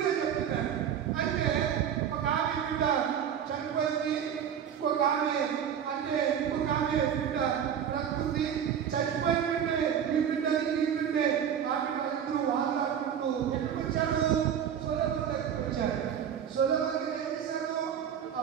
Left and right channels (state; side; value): quieter; left; 8.8 dB